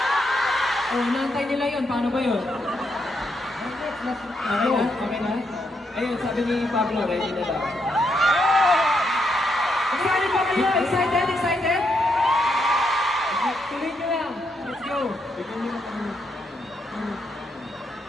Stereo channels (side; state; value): both; normal; correlation 0.79